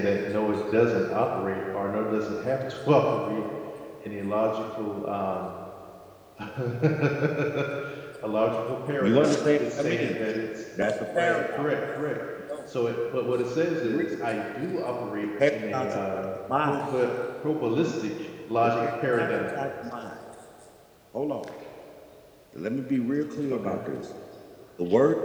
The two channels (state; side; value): identical; both; correlation 1.00